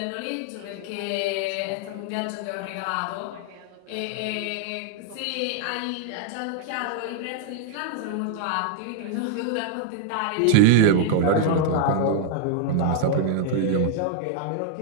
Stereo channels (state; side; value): different; both; correlation 0.00